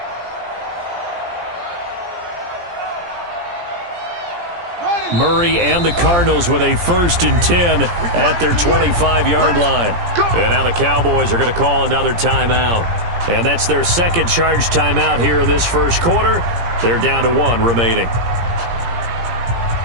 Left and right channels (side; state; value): left; late; 17 ms